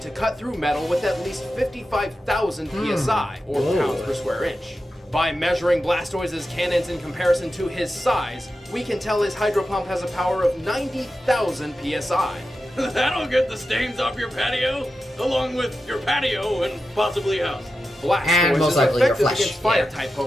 cut through metal with at least 55,000 psi, or pounds per square inch. By measuring Blastoise's cannons in comparison to his size, we can tell his Hydro Pump has a power of 90,000 psi. That'll get the stains off your patio, along with your patio and possibly house. Blastoise And most is likely your effective flesh, against fire-type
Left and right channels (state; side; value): normal; both; correlation 0.91